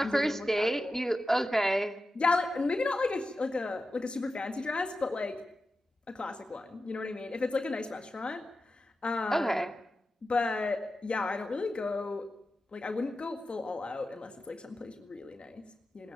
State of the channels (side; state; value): both; normal; correlation 0.92